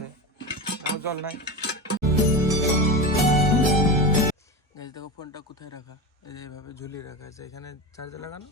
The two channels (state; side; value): normal; both; correlation 0.23